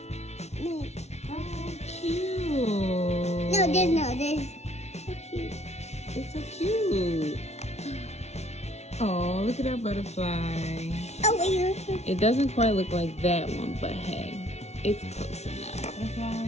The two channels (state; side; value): late; right; 0.31 ms